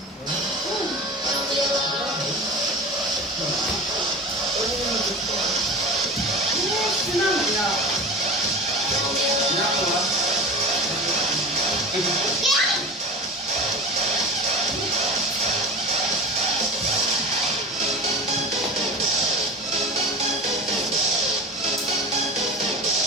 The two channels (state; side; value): normal; both; correlation 0.31